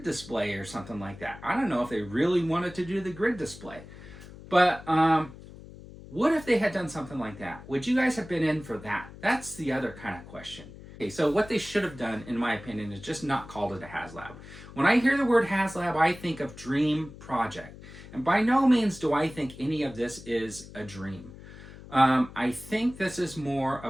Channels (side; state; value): left; noise; hum, 16 dB below the sound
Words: display or something like that. I don't know if they really wanted to do the grid display. But what if they had done something like that? Would you guys have been in for that? That's the other kind of question. Okay, so what they should have done, in my opinion, is just not called it a HasLab. When I hear the word HasLab, I think of dream project. And by no means do I think any of this is a dream. I think this is more a